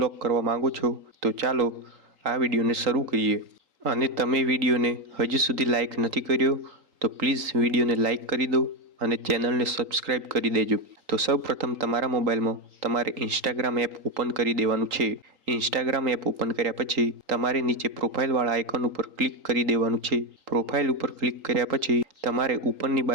કરવા માંગો છો, તો ચાલો આ વિડીયોને શરૂ કરીએ। અને તમે વિડીયોને હજી સુધી લાઈક નથી કર્યો તો પ્લીઝ વિડીયોને લાઈક કરી દો અને ચેનલને સબસ્ક્રાઇબ કરી દેજો। તો સૌપ્રથમ તમારા મોબાઈલમાં તમારે ઇન્સ્ટાગ્રામ એપ ઓપન કરી દેવાનું છે। ઇન્સ્ટાગ્રામ એપ ઓપન કર્યા પછી તમારે નીચે પ્રોફાઇલવાળા આઇકન ઉપર ક્લિક કરી દેવાનું છે। પ્રોફાઇલ ઉપર ક્લિક કર્યા પછી તમારે ઉપરની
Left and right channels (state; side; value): late; left; 3.8 ms